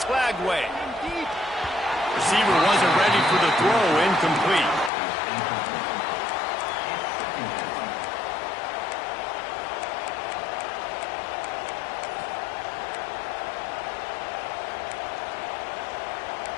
Lagway. Receiver wasn't ready for the throw, incomplete.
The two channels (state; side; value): drops out; right; at 4.9 s